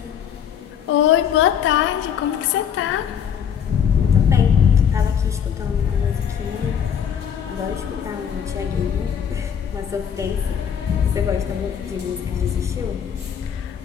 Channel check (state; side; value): quieter; right; 8.2 dB